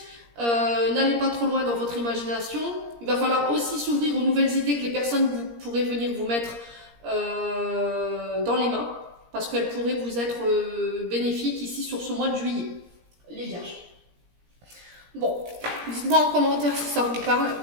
N'allez pas trop loin dans votre imagination. Il va falloir aussi s'ouvrir aux nouvelles idées que les personnes pourraient venir vous mettre dans les mains, parce qu'elles pourraient vous être bénéfiques ici sur ce mois de juillet, les vierges. Bon, dites-moi en commentaire si ça vous parle.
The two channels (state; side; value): late; left; 17 ms